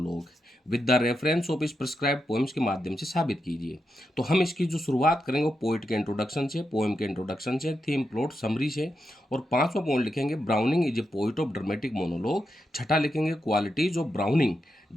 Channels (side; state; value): both; normal; correlation 0.86